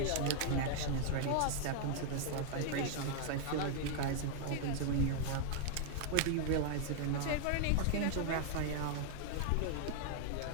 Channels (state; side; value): different; both; correlation 0.00